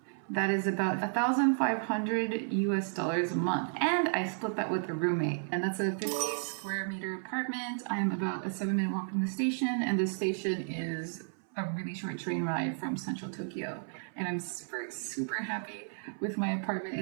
That is about 1,500 US dollars a month. And I split that with a roommate. And that's a 50 square meter apartment. I'm about a 7-minute walk from the station, and the station is a really short train ride from central Tokyo. And I'm super happy with my apartment.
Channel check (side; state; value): left; silent; 56 dB below the other